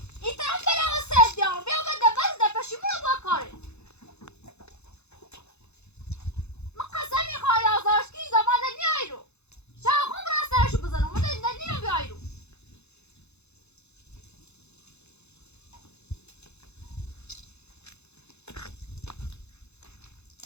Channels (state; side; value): late; right; 0.81 ms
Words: این طرف بره و سیف دیارم بیا بده بس ده پشیمون با کاره من قسم میخوای آزارشکی زمان نیایی رو شاخون برای سرشو بزنم من نیم بیایی رو